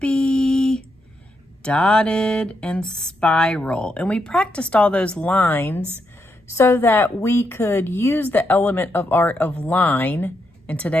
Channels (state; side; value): normal; both; correlation 0.81